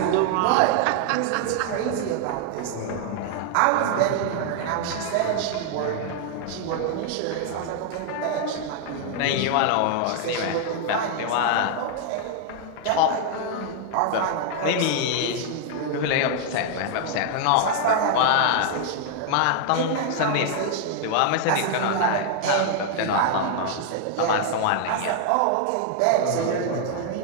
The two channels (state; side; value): different; both; correlation 0.00